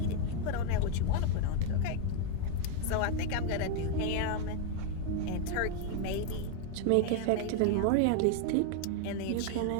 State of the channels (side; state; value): both; different; correlation 0.01